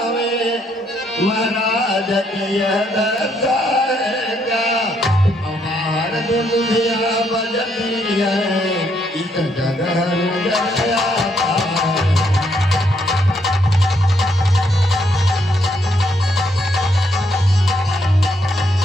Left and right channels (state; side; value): normal; both; correlation 0.73